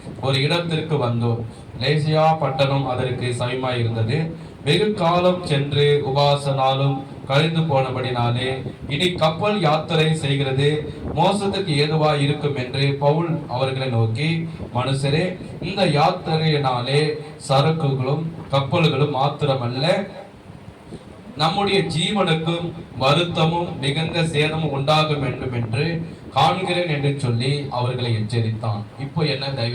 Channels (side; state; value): both; identical; correlation 1.00